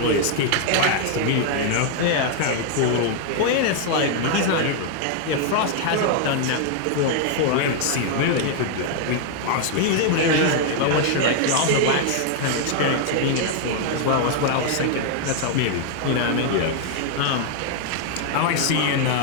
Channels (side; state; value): both; different; correlation 0.00